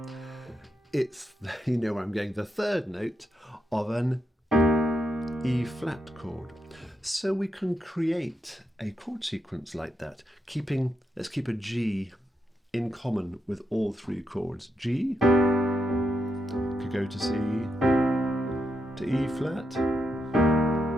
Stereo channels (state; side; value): normal; both; correlation 0.82